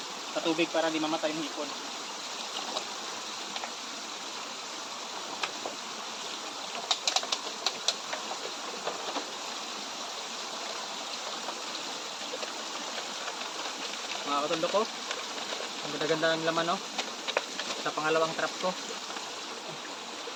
sa tubig para di mamatay yung hipon. Mga kataldok ko, ang ganda-ganda ng laman, no? Sa pangalawang trap ko.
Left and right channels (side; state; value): both; identical; correlation 1.00